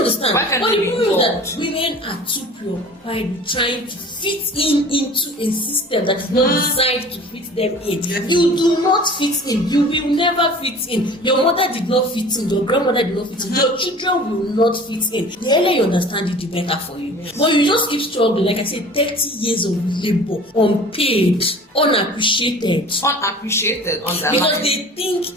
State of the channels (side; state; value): both; normal; correlation 0.43